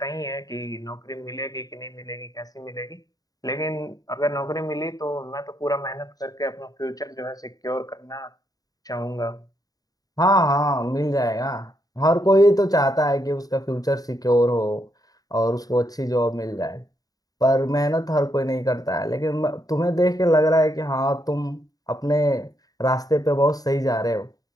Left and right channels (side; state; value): right; late; 0.18 ms